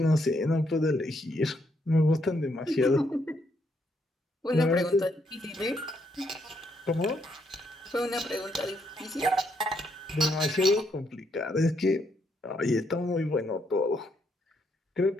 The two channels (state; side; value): normal; both; correlation 0.75